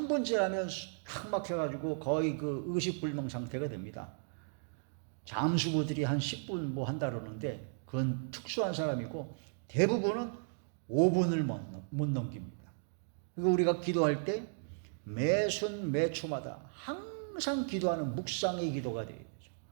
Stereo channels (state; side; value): silent; left; digital silence